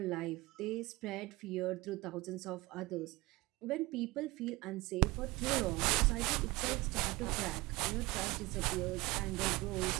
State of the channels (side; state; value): left; quieter; 21.6 dB